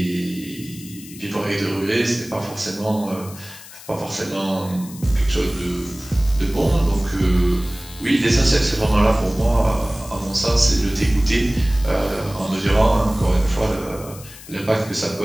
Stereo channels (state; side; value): noise; left; hiss, 17 dB below the sound